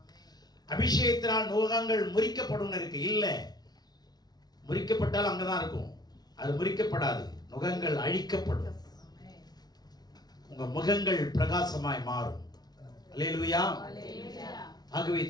அபிஷேகத்தினால் நுகங்கள் முறிக்கப்படும் இருக்கு. இல்ல, முறிக்கப்பட்டால் அங்கதான் இருக்கும், அது முறிக்கப்படாது. நுகங்கள் அழிக்கப்படும், உங்க முகங்கள் பிரகாசமாய் மாறும். அல்லேலூயா. ஆகவே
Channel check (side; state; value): right; late; 0.19 ms